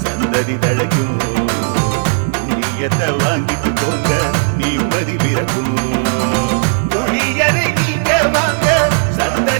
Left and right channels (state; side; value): silent; left; digital silence